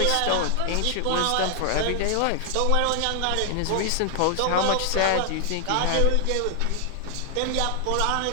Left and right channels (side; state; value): both; different; correlation 0.00